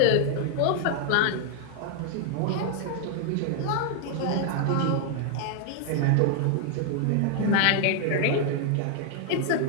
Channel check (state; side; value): different; both; correlation 0.00